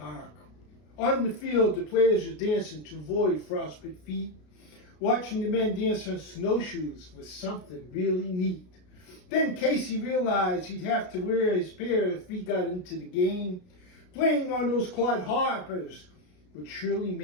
On the field, the players were dancing to avoid frostbite feet. Watching the men dance on snowshoes was something really neat. Then Casey realized he'd have to wear his pair if he got into the game. Playing on those clodhoppers would surely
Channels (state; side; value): late; right; 33 ms